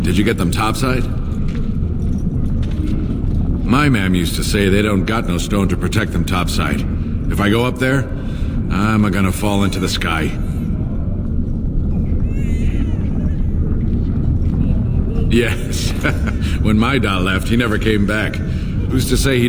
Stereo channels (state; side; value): identical; both; correlation 1.00